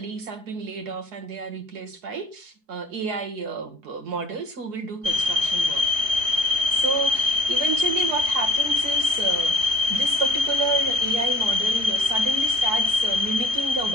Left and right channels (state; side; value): late; left; 4.7 ms